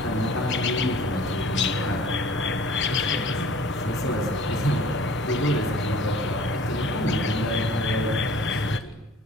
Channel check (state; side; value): normal; both; correlation 0.49